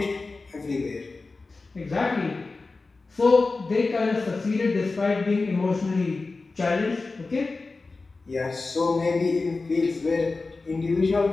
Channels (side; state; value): right; quieter; 3.7 dB